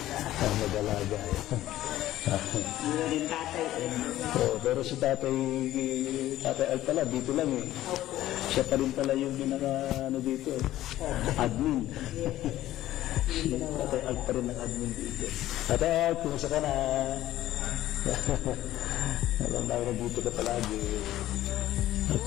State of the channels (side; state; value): right; quieter; 14.3 dB